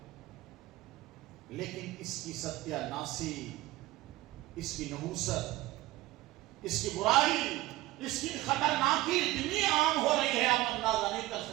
لیکن اس کی ستیاناسی, اس کی نحوست, اس کی برائی, اس کی خطرناکی اتنی عام ہو رہی ہے آپ اندازہ نہیں کر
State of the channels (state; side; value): quieter; left; 17.4 dB